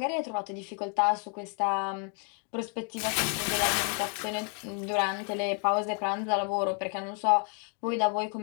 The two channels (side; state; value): right; quieter; 40.0 dB